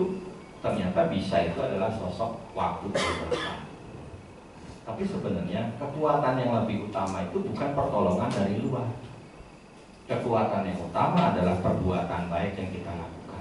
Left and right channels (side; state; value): both; identical; correlation 1.00